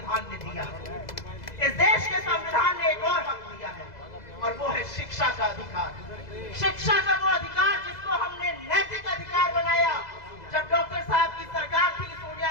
ने दिया है। इस देश के संविधान ने एक और हक दिया है, और वो है शिक्षा का अधिकार। शिक्षा का वो अधिकार जिसको हमने नैतिक अधिकार बनाया जब डॉक्टर साहब की सरकार थी,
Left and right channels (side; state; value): right; late; 2.0 ms